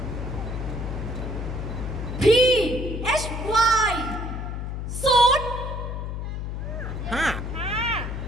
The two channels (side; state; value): left; noise; hum, 4 dB below the sound